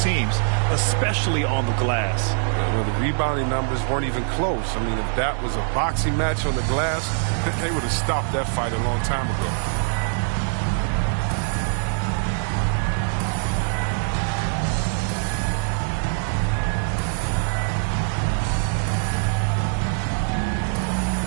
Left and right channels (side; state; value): left; silent; 59 dB below the other